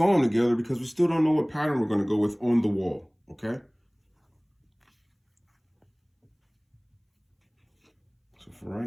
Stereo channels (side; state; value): both; identical; correlation 1.00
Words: them together because we still don't know what pattern we're going to go with on the wall, okay? So for